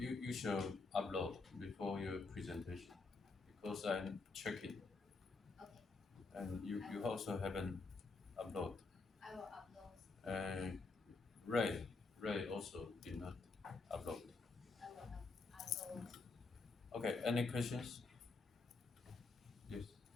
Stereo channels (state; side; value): quieter; right; 4.0 dB